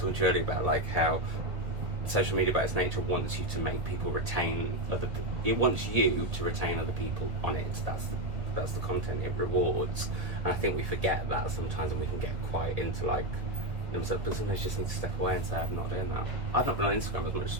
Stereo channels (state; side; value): late; left; 1.7 ms